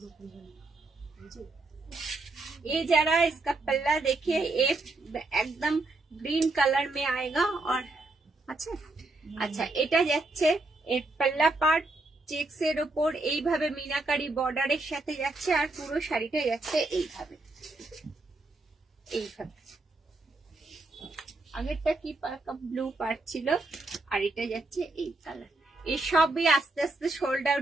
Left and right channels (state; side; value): quieter; left; 3.1 dB